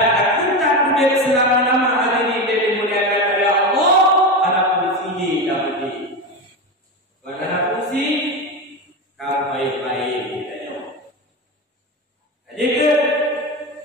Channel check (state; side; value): normal; both; correlation 0.19